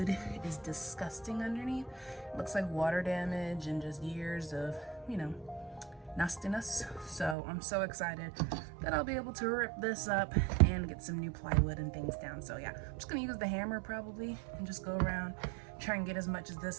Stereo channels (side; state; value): left; drops out; at 7.4 s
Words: is disgusting underneath. It looks like water damage and just years of, you know, nastiness. So I'm so excited that I'll be able to rip this up and get some new plywood and things down. So yeah, I'm just gonna use the hammer probably and just go around, try and get as much of